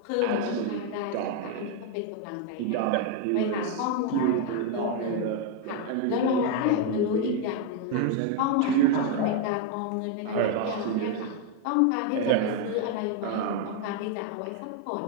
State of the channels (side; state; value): both; different; correlation 0.01